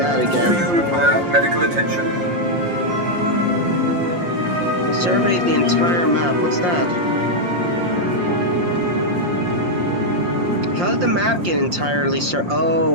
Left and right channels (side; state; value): left; late; 5.7 ms